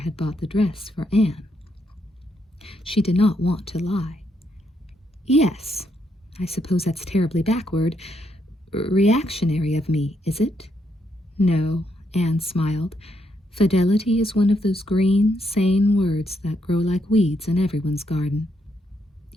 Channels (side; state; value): both; normal; correlation 0.77